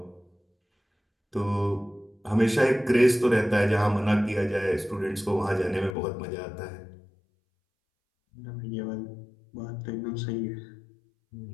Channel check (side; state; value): right; drops out; at 6.0 s